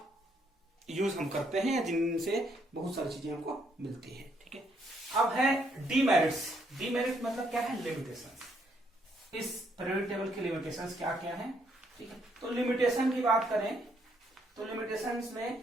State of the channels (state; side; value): normal; both; correlation 0.72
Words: यूज हम करते हैं, जिनसे बहुत सारी चीजें हमको मिलती है। ठीक है, अब है डीमेरिट्स। डीमेरिट मतलब क्या है, लिमिटेशंस। इस पीरियोडिक टेबल की लिमिटेशंस क्या क्या है। ठीक है, तो लिमिटेशन की बात करें तो लिमिटेशंस